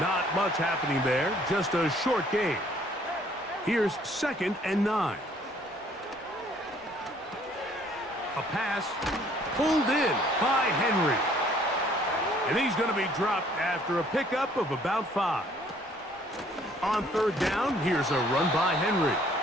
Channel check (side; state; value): both; normal; correlation 0.60